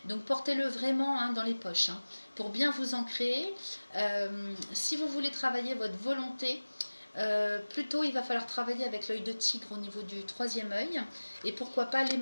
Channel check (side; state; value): both; inverted; correlation -1.00